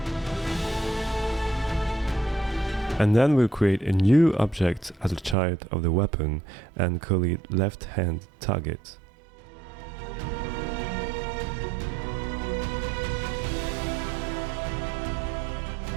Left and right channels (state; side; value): drops out; left; at 5.4 s